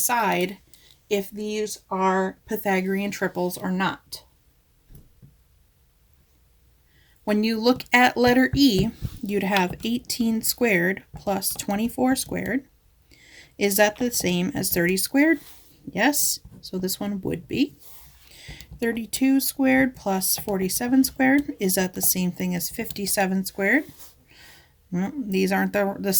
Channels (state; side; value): identical; both; correlation 1.00